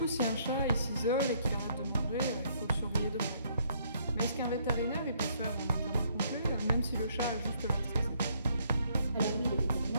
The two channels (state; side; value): inverted; both; correlation -0.67